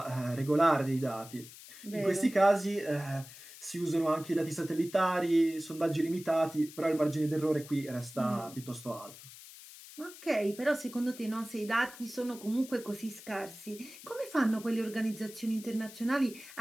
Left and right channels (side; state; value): left; noise; hiss, 17 dB below the sound